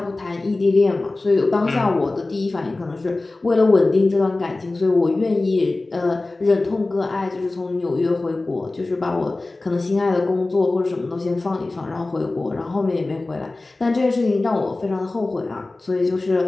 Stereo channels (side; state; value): right; quieter; 3.1 dB